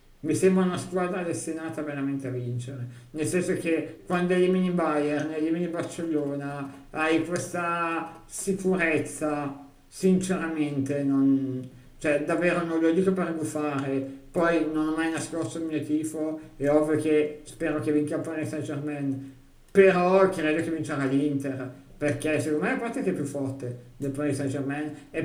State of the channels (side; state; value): both; identical; correlation 1.00